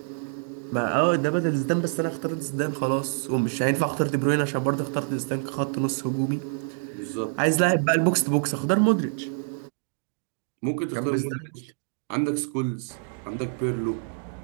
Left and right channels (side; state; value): left; silent; digital silence